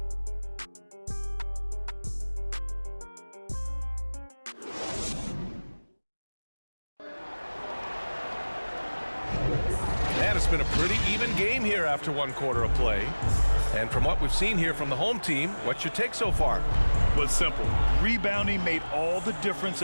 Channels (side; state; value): both; inverted; correlation -1.00